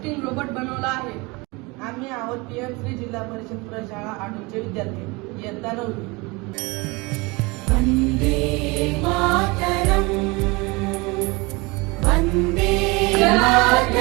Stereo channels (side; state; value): left; quieter; 25.6 dB